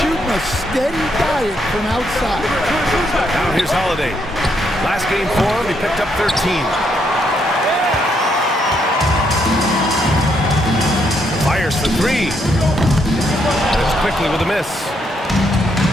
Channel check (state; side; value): normal; both; correlation 0.75